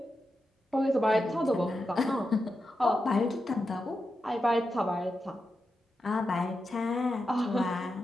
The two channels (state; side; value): normal; both; correlation 0.89